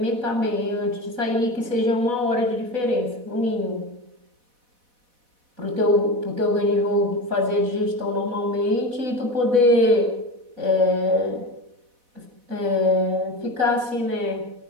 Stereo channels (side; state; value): left; late; 4.1 ms